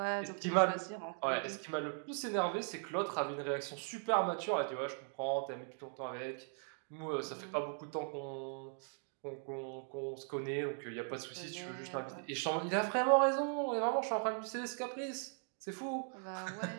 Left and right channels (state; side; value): silent; left; 52 dB below the other